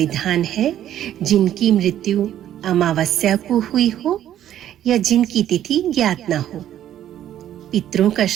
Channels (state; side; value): quieter; left; 11.5 dB